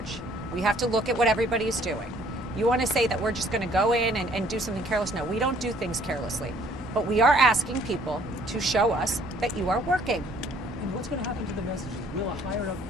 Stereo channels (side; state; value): both; normal; correlation 0.60